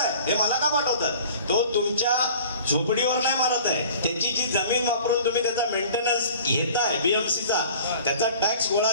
हे मला का पाठवतात? तो तुमच्या झोपडीवर नाही मारत आहे, त्याची जी जमीन वापरून तुम्ही त्याचा मेंटेनन्स घेताय बीएमसीचा, त्याचा टॅक्स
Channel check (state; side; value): inverted; both; correlation -0.46